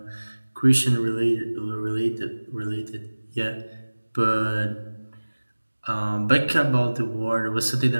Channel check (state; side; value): inverted; both; correlation -1.00